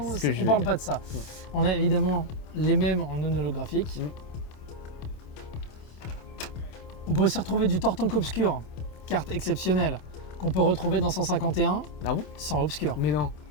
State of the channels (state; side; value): late; right; 27 ms